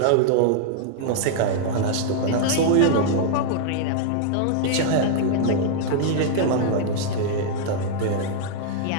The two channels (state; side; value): different; both; correlation -0.01